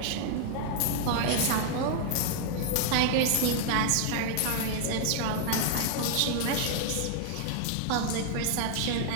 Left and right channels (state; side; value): different; both; correlation 0.00